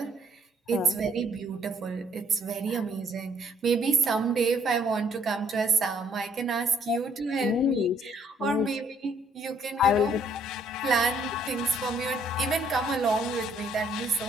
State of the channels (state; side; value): normal; both; correlation 0.65